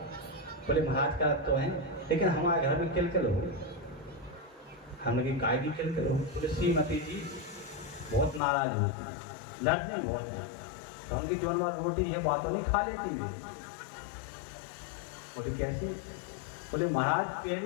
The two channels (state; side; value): drops out; right; at 8.4 s